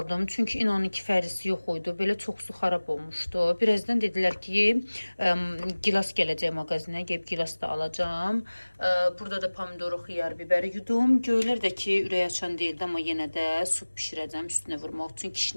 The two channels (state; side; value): inverted; both; correlation -1.00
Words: Çünki inanın ki, fərisi yox idi. Belə çoxsu xarab olmuşdu. Birazdan dedilər ki, gilas gələcək mağazinə, gəlib gilas da alacağım. Burada da pomidoru, xiyar, biberi yudum. Göylər də ki, ürək açan deyildi, amma yenə də su bişirəcəm üstünə vurmaq üçün.